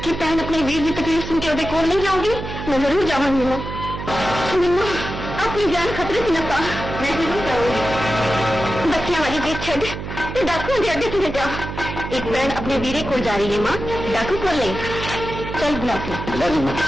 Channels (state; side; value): noise; right; hum, 8 dB below the sound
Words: ਕਿ ਭੈਣ ਆਪਣੇ ਵੀਰ ਦੀ ਤਕਲੀਫ ਸੁਣ ਕੇ ਉਹਦੇ ਕੋਲ ਨਹੀਂ ਜਾਊਗੀ? ਮੈਂ ਜ਼ਰੂਰ ਜਾਵਾਂਗੀ ਮਾਂ। ਮੈਨੂੰ ਆਪਣੀ ਜਾਨ ਖਤਰੇ 'ਚ ਨਾ ਪਾ। ਮੈਂ ਜ਼ਰੂਰ ਜਾਊਂਗੀ। ਬੱਚਿਆਂ ਵਾਲੀ ਦੇਖ ਛੱਡ ਤੇ ਡਾਕੂਆਂ ਦੇ ਅੱਡੇ ਤੇ ਜਾ। ਇੱਕ ਭੈਣ ਆਪਣੇ ਵੀਰੇ ਕੋਲ ਜਾ ਰਹੀ ਹੈ ਮਾਂ, ਡਾਕੂ ਕੋਲ ਨਹੀਂ। ਚੱਲ ਗੁਲਾਬ ਲੈ ਜੀ ਮਾਂ।